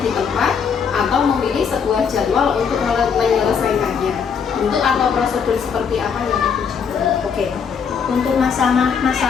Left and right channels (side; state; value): right; quieter; 6.6 dB